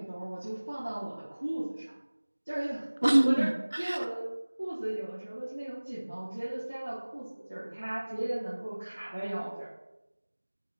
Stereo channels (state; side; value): inverted; both; correlation -1.00